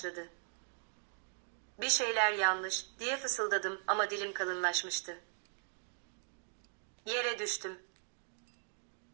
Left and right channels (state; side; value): silent; left; digital silence